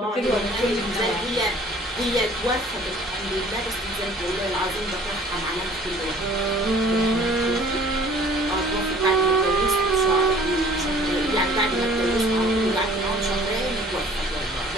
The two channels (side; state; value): both; normal; correlation 0.52